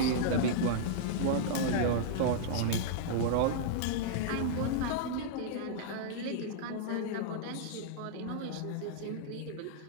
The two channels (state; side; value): different; both; correlation -0.02